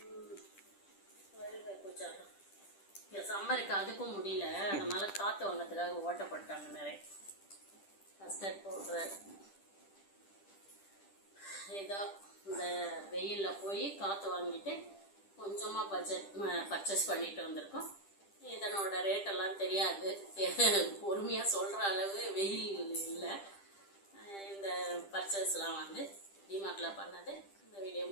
ரயில்வே பூஜா சம்மருக்கு அதுக்கும் முடியல, அதனால காற்று வாங்கிறதுக்காக ஓட்டப்பட்டாங்க நிறைய. Custard powder. ஏதோ இந்த வெயிலில் போய் காற்று வாங்கிட்டு கொஞ்சமாக பர்ச்சேஸ் பண்ணிட்டு வந்திருக்கோம். இதனோட ரேட்டெல்லாம் தெரியாது, பொறுமையாக சொல்கிற அளவு வெயில் இல்லை. இந்த பர்ச்சேஸ்லாம் டிமார்ட்டில் பண்ணது. இந்த வீடியோ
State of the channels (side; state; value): right; late; 10 ms